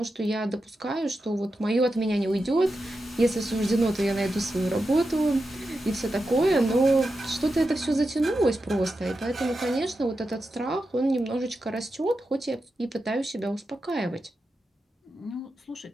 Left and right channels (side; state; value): both; normal; correlation 0.89